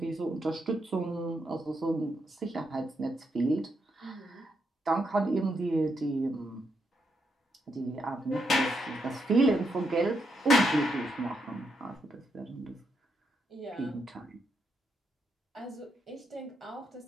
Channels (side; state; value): both; normal; correlation 0.80